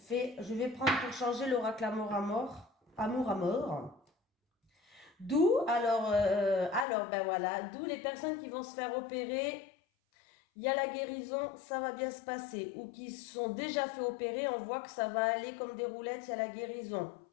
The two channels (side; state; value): right; drops out; at 6.9 s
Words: vais prendre pour changer l'oracle amour à mort. Amour à mort. D'où, ben voilà, d'où les personnes qui vont se faire opérer, il y a la guérison, ça va bien se passer. Ou qui sont déjà fait opérer, on voit que ça va aller comme des roulettes, il y a la guérison.